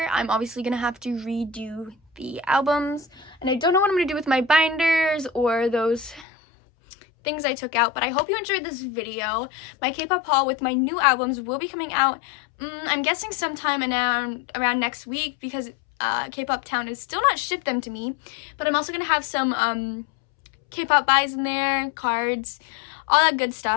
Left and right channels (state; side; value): drops out; right; at 6.2 s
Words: I'm obviously gonna have to redo the albums, and I don't know what I'm gonna do with my binders or those things I took out, but I hope you enjoyed this video. My K-pop haul with my new albums will be coming out, I'm guessing sometime around next week, because K-pop Town has still not shipped them to me, but I'm also gonna have some K-pop buys in there, cards, all that good